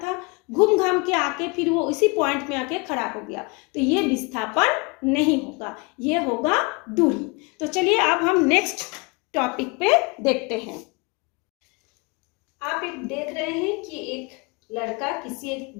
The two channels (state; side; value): quieter; right; 29.1 dB